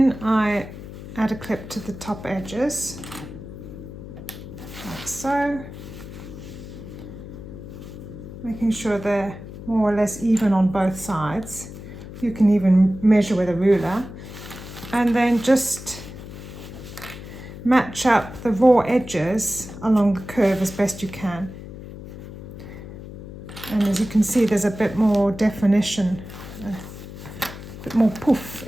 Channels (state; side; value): noise; left; hum, 13 dB below the sound